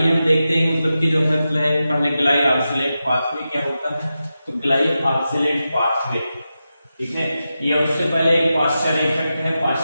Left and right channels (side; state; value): both; inverted; correlation -0.91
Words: हम देखते हैं कि जो है पहले ग्लाई ऑक्सिलेट पाथवे क्या होता है। तो ग्लाई ऑक्सिलेट पाथवे, ठीक है, ये उससे पहले एक पास्चर इफेक्ट है।